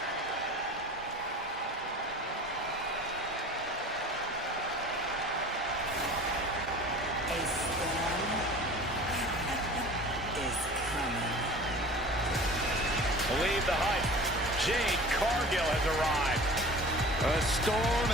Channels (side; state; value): both; normal; correlation 0.41